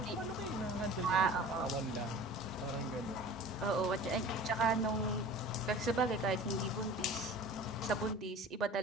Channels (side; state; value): both; normal; correlation 0.40